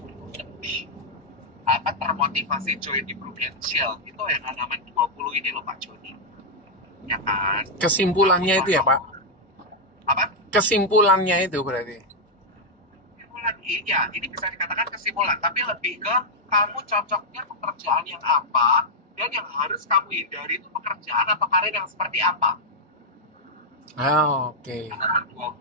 lebih termotivasi join di Prudential itu yang halaman 20 ini loh Pak Joni. Ya kan? Kesimpulannya itu ya Pak? Apa? Kesimpulannya itu berarti? dikatakan iya, ini bisa dikatakan kesimpulan, tapi lebih ke kamu cocoknya pekerjaan yang apa dan yang harus kamu hindari itu pekerjaan atau karir yang seperti apa. Oke. Halaman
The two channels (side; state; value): both; normal; correlation -0.04